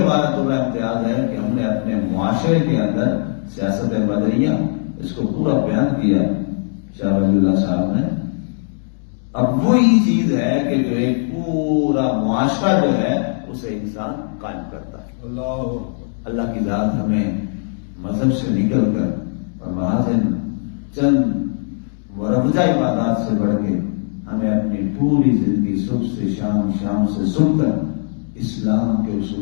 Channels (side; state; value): right; silent; digital silence